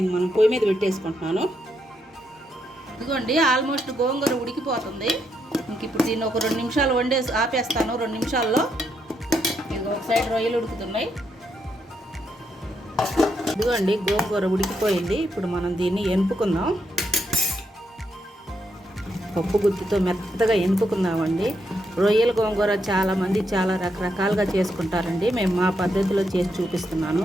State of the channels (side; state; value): both; normal; correlation 0.79